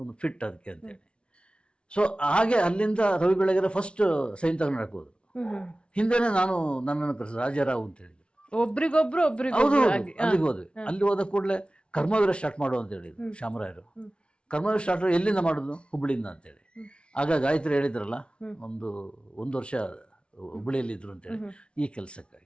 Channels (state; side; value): late; right; 0.058 ms